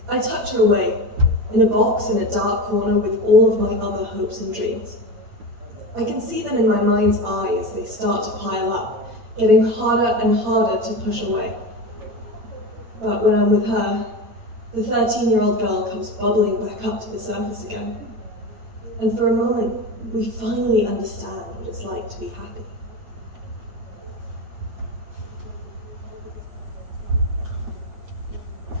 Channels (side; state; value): left; late; 8.9 ms